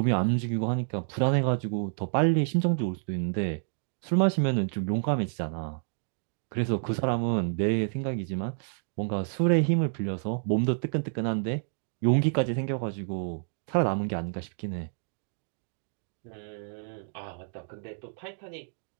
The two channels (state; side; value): silent; left; digital silence